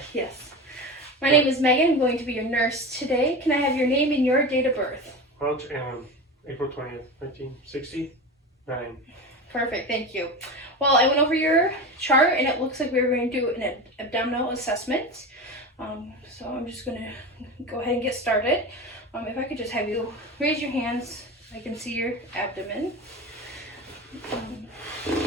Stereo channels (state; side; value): normal; both; correlation 0.26